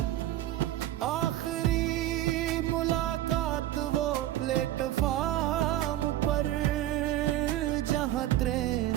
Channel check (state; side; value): quieter; left; 13.8 dB